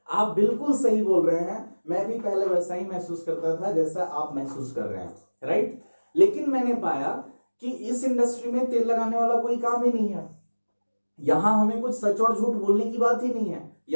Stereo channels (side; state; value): both; inverted; correlation -1.00